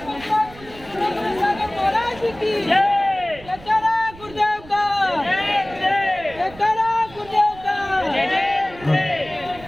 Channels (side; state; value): right; noise; rumble, 20 dB below the sound